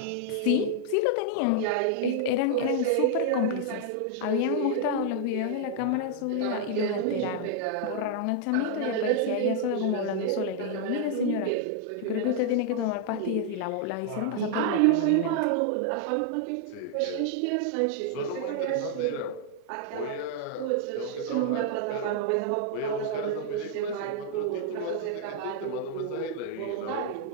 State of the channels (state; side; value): different; both; correlation -0.01